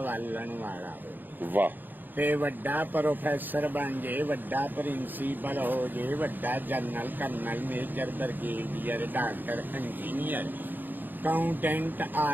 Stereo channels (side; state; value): left; late; 0.089 ms